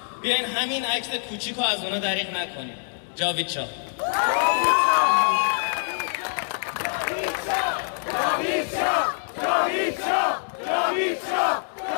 بیاین همین عکس کوچیک رو از اونا دریغ نکنیم. جاوید شاه. جاوید شاه، جاوید شاه، جاوید شاه،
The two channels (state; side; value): silent; right; digital silence